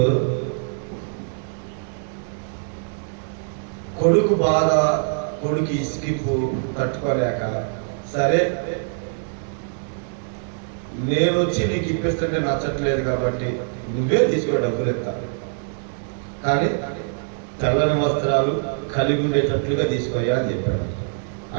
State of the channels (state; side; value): silent; left; digital silence